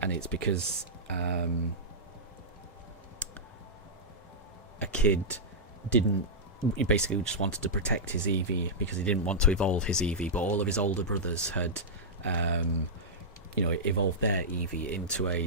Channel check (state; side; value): normal; both; correlation -0.11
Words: it's because a kid he basically just wanted to protect his Eevee because he didn't want to evolve his Eevee, but all of his older brothers had evolved their Eevee into a